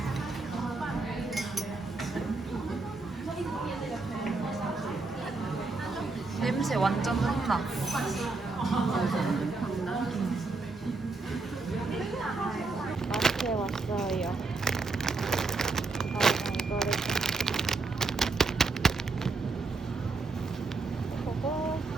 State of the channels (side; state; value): left; quieter; 3.7 dB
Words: 냄새 완전 흥나. 마트에 왔어요. 이거를 보고